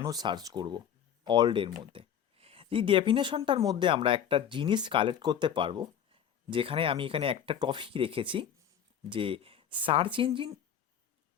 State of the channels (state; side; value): quieter; right; 8.9 dB